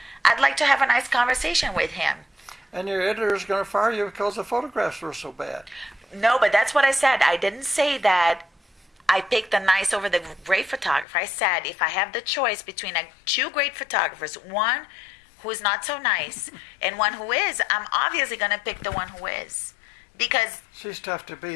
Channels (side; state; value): right; drops out; at 11.1 s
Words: I'd like to have a nice conversation with him. And your editor is going to fire you because the photographs were so bad. No, but that's what I said. I didn't say that I picked the nice over the great photographer. I said if I have the choice between two great photographers, one who is not so nice and one who is, I'm obviously going to pick the one who is. Because she's tough to